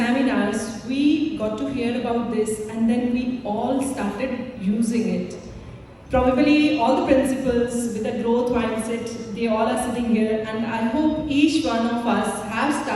we got to hear about this and then we all started using it. Probably all the principals with a growth mindset, they all are sitting here, and I hope each one of us have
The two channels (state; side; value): identical; both; correlation 1.00